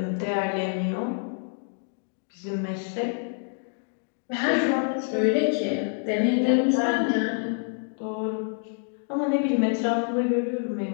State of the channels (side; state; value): right; silent; 60 dB below the other